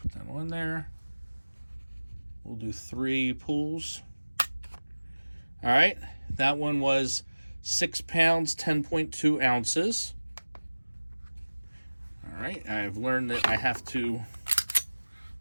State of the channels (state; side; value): inverted; both; correlation -1.00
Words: that on there. We'll do 3 pulls. All right, that one was 6 pounds, 10.2 ounces. All right, I've learned that I have to